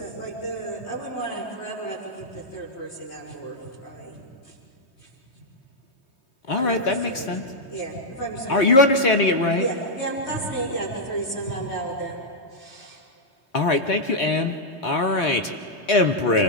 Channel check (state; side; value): late; right; 3.8 ms